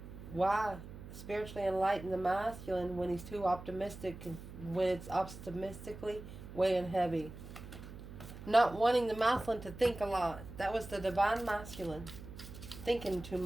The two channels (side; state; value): right; noise; hum, 13 dB below the sound